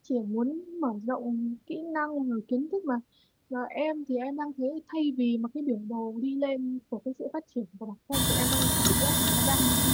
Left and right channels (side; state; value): both; identical; correlation 1.00